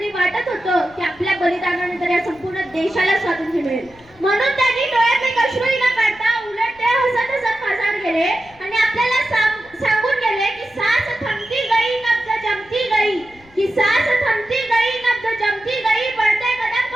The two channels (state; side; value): noise; left; rumble, 28 dB below the sound